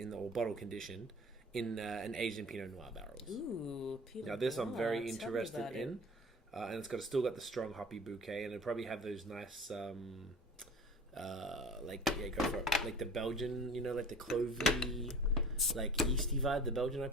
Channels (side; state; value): both; normal; correlation 0.43